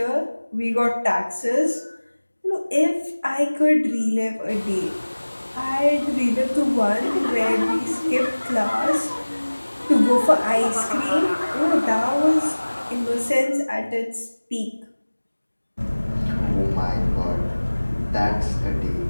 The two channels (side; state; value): both; inverted; correlation -1.00